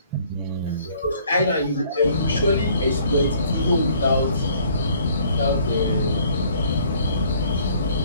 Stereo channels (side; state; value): both; inverted; correlation -0.59